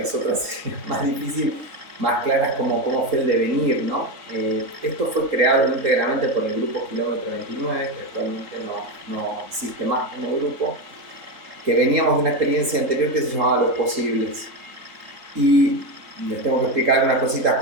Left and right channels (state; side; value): late; left; 3.8 ms